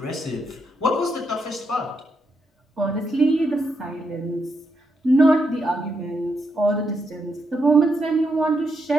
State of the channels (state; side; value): normal; both; correlation 0.81